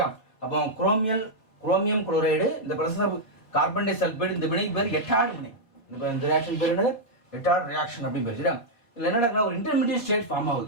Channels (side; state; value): right; late; 4.4 ms